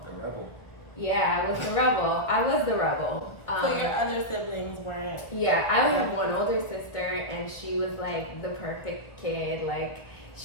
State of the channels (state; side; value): late; right; 1.4 ms